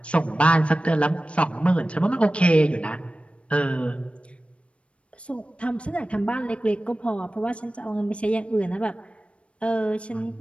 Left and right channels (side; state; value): right; late; 0.061 ms